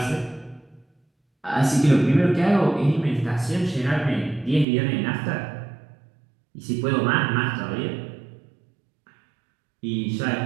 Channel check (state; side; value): drops out; left; at 4.7 s